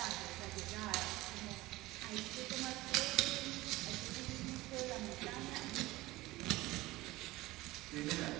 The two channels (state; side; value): quieter; left; 19.0 dB